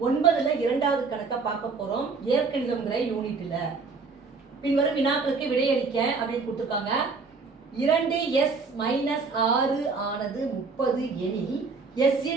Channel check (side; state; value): left; quieter; 4.5 dB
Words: 9ல் 2வது கணக்கை பார்க்க போகிறோம். இயற்கணிதம்ங்கிற யூனிட்டில் பின்வரும் வினாக்களுக்கு விடையளிக்க அப்படின்னு கொடுத்துருக்காங்க. 2s-6 ஆனது 30 எனில்